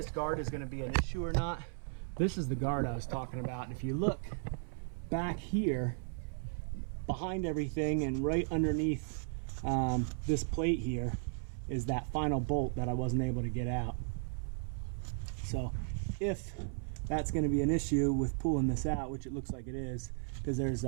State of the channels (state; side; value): silent; left; 54 dB below the other